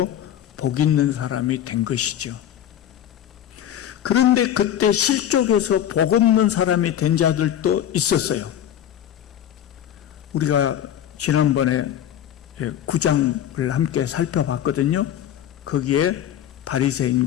복 있는 사람이 된 것이죠. 그런데 그때 실족에서 복 없는 사람이 된 자들도 있었어요. 우리가 지난번에 9장을 함께 살펴봤거든요. 거기에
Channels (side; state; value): right; quieter; 10.5 dB